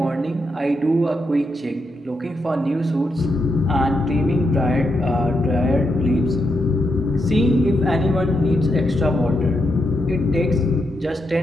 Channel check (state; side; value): normal; both; correlation 0.83